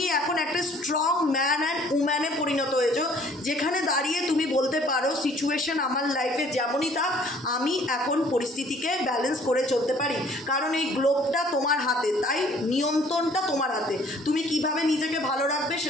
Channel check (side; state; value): both; normal; correlation 0.57